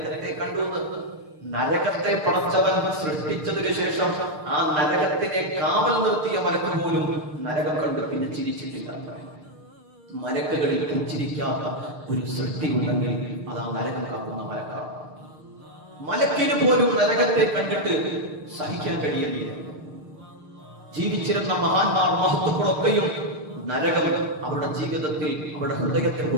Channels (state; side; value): late; left; 6.6 ms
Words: കണ്ടു. നരകത്തെ പടച്ചവൻ സൃഷ്ടിച്ചതിനു ശേഷം ആ നരകത്തിനെ കാവൽ നിർത്തിയ മലക്ക് പോലും നരകം കണ്ട് പിന്നെ ചിരിച്ചിട്ടില്ല. മലക്കുകളിൽ പുഞ്ചിരിക്കാത്ത ഒരു സൃഷ്ടി ഉണ്ടെങ്കിൽ അത് ആ നരകം കാക്കുന്ന മലക്കാണ്. മലക്കിന് പോലും നരകത്തെ കണ്ടിട്ട് സഹിക്കാൻ കഴിയുന്നില്ല. ജീവിച്ചിരുന്ന മഹാന്മാർ, മഹത്തുക്കളൊക്കെയും നരകം അവരുടെ ജീവിതത്തിൽ, അവരുടെ ഹൃദയത്തെ